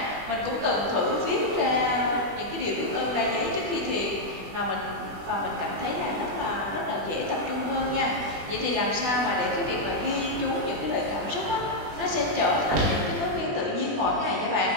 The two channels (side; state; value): left; late; 20 ms